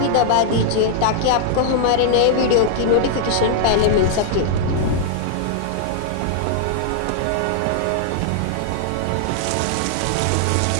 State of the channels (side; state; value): both; different; correlation -0.01